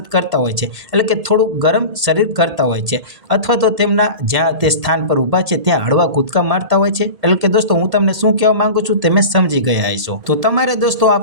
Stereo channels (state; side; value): late; left; 1.8 ms